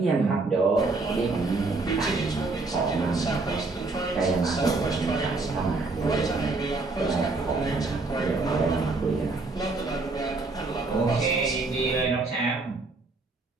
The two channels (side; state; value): left; quieter; 3.5 dB